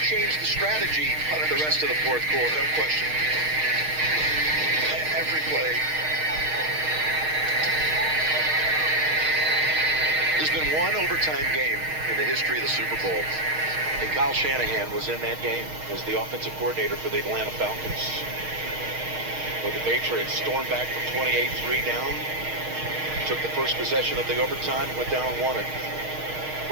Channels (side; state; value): left; late; 6.4 ms